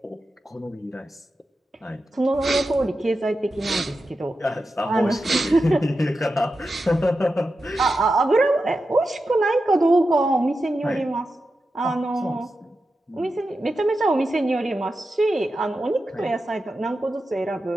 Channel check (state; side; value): normal; both; correlation 0.90